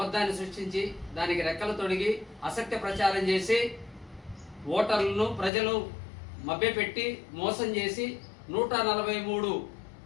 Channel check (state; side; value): drops out; right; at 5.5 s